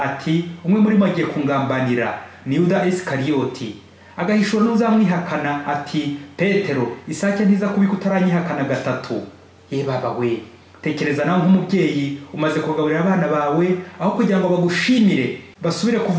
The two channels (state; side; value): identical; both; correlation 1.00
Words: ati, umwe muri bo agiye kungambanira, ni Yuda Isikariyoti. Agahishura n'uzamwihakana ati, Petero, isake ntiza kubika utaranyihakana gatatu. Ye baba we, tekereza nawe nk'umubyeyi umaze kugaburira abana bawe, aho kugira ngo bagushimire basubire